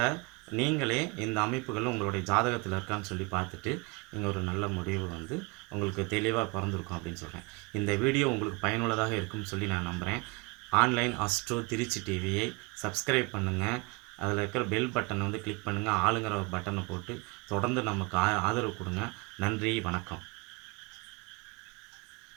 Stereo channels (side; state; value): left; quieter; 27.4 dB